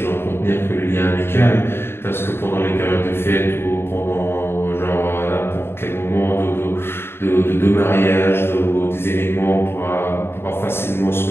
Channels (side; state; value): right; late; 0.11 ms